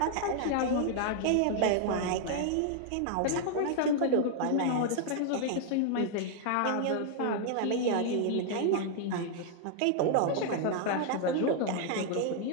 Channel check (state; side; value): different; both; correlation 0.00